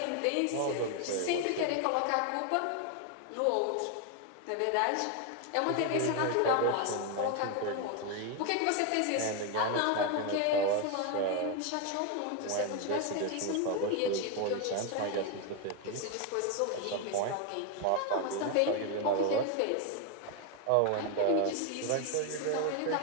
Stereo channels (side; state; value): both; different; correlation 0.01